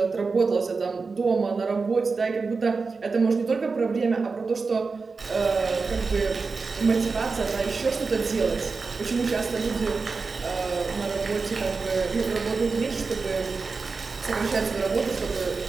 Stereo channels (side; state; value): left; quieter; 4.4 dB